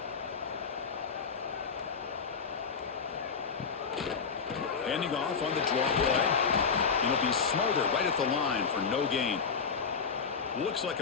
Handing off on the draw play. And he'll be smothered right at the line for no gain. Looks like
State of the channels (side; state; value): right; quieter; 5.7 dB